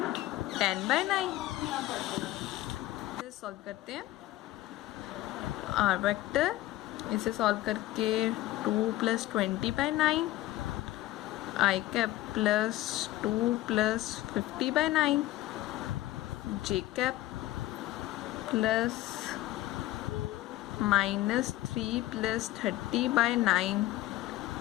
10/9। इसे सॉल्व करते हैं। आर वेक्टर इसे सॉल्व करके 2 + 20/9 आई कैप प्लस 2 + 50/9 जे कैप प्लस -3 + 30/9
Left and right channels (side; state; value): right; quieter; 16.1 dB